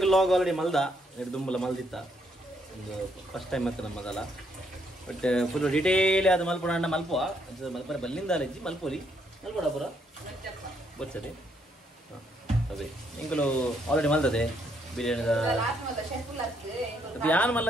ಲಾಗ್ ಆಲ್ರೆಡಿ ಮಲ್ದ ಎರಡು ದುಂಬಲ ಮಲ್ದಿತ್ತ ಒಂದು ಫಸ್ಟ್ ಟೈಮ್ ಮತ್ತೆ ನಮ್ಮದಲ್ಲ. ಬಟ್ ಫುಲ್ ಡೀಟೇಲ್ ಅದು ಮಲ್ಪೋಣ ಅಣ್ಣ ಮಲ್ಪುವ ಮಲ್ಪರ ಬಲ್ಲಿಂದ ಅಲೆಜ್ಜಿ ಮಲ್ಪೋಲಿ ಮಲ್ಪೋಡ ಪುರ ಬರ್ಸರಿ ಅದೇ ಇಂಕಲು ಆಲ್ರೆಡಿ ಮಲ್ತದೆ ಬಿರಿಯಾನಿದ ಯಾನ್ ಮಲ್ಲ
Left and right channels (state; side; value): normal; both; correlation 0.73